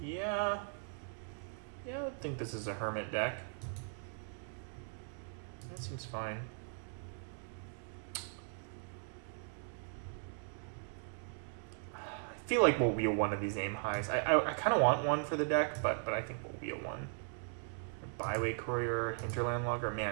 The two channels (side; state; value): left; silent; 52 dB below the other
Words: Yeah, I would think this is a Hermit deck. That seems fine. I feel like we'll wheel one of these aim highs. I kind of want one for the deck, but I think we'll wheel one. Byway Courier, Hinterland Logger.